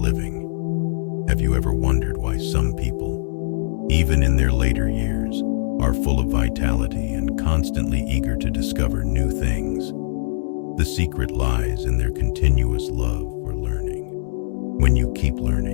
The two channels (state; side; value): silent; right; digital silence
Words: Have you ever wondered why some people, even in their later years, are full of vitality and constantly eager to discover new things? The secret lies in their continuous love for learning. When you keep